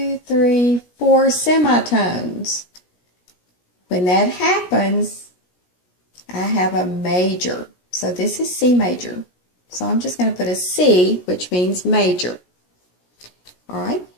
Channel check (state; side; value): late; right; 17 ms